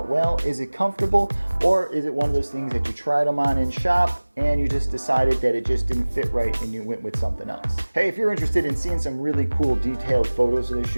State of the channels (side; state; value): both; inverted; correlation -1.00